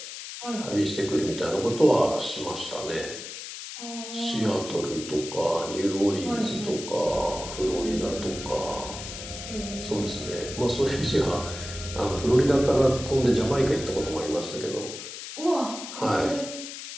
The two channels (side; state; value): left; noise; hiss, 10 dB below the sound